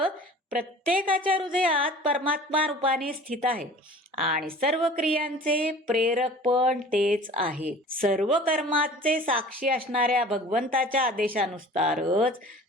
प्रत्येकाच्या हृदयात परमात्मा रूपाने स्थित आहे आणि सर्व क्रियांचे प्रेरक पण तेच आहेत. सर्व कर्माचे साक्षी असणाऱ्या भगवंताच्या आदेशानुसारच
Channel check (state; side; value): normal; both; correlation 0.43